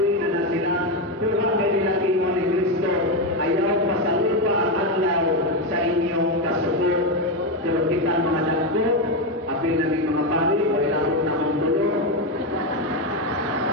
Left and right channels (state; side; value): normal; both; correlation 0.09